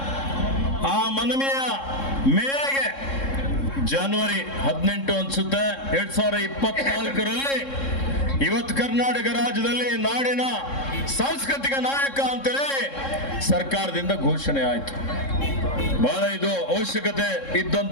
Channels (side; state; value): right; late; 3.7 ms